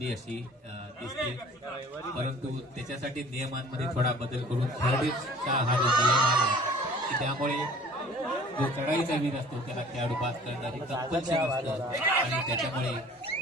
अशी दिसते, परंतु त्याच्यासाठी नियमांमध्ये थोडा बदल करून थर्डचा हा जो नियम आहे की त्यामुळे जो चढाईचा वीर असतो त्याला खेळाडू पास करणारी कंपल्शन असतं आणि त्याच्यामुळे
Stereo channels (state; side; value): normal; both; correlation 0.50